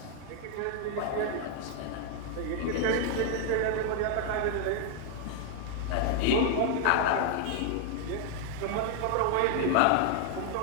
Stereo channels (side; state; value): both; different; correlation 0.00